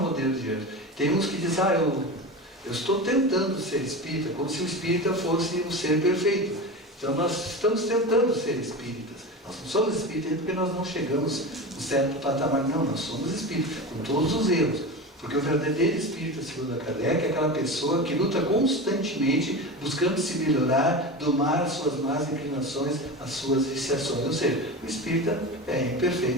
modelo de anjo. Tem uns que dizem, eu estou tentando ser espírita, como se o espírita fosse um ser perfeito. Então nós estamos tentando ser espíritas. Nós não somos espíritas porque nós não chegamos no certo patamar. Não, nós somos espíritas, com todos os erros. Porque o verdadeiro espírita, segundo a Kardec, é aquela pessoa que luta constantemente buscando se melhorar, domar as suas más inclinações, as suas viciações. Ou seja, o espírita é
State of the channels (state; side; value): normal; both; correlation 0.26